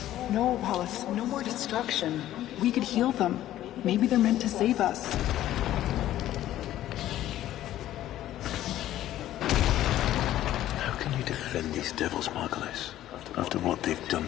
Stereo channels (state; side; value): quieter; right; 13.3 dB